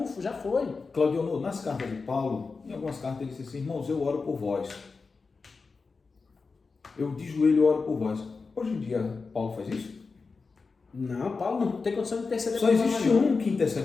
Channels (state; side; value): quieter; right; 4.5 dB